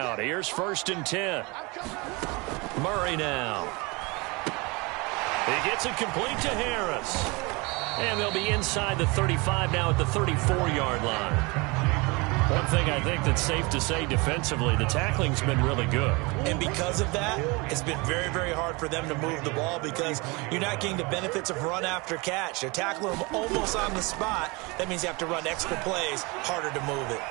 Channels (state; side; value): quieter; left; 26.7 dB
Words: Here's 1st and 10. Murray now. He gets it complete to Harris. And they'll be inside the 35 now at the 34-yard line. One thing I think that's safe to say defensively, the tackling's been really good. And because of that, it's been very, very hard for them to move the ball because you're not getting the benefits of run after catch. They're tackling them almost on the spot. That means you have to run extra plays, harder to move it.